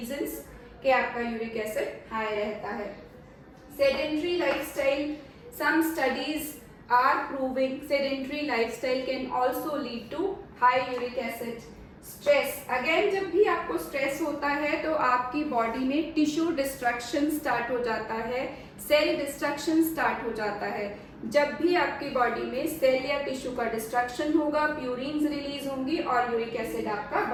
कि आपका यूरिक एसिड हाई रहता है। Sedentary lifestyle, some studies are proving sedentary lifestyle can also lead to high uric acid. Stress, again जब भी आपको stress होता है तो आपकी बॉडी में टिश्यू डिस्ट्रक्शन स्टार्ट हो जाता है, सेल डिस्ट्रक्शन स्टार्ट हो जाता है। जब भी आपकी बॉडी में सेल या टिश्यू का डिस्ट्रक्शन होगा, प्यूरिन्स रिलीज होंगी और यूरिक एसिड आपका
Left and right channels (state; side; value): identical; both; correlation 1.00